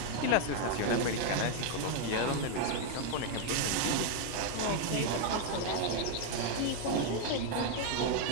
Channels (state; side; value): different; both; correlation 0.00